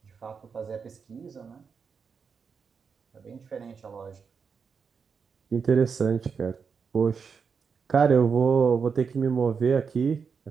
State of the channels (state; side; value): quieter; left; 5.9 dB